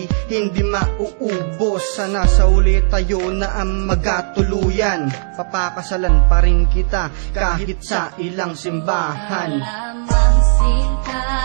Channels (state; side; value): silent; left; digital silence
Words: hindi mauubos. Sana sa uli tayo na ang magkatuluyan. Papakasalan pa rin kita kahit sa ilang simbahan. Lamang sinta,